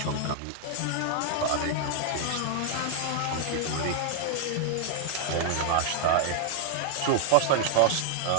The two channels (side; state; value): both; different; correlation 0.00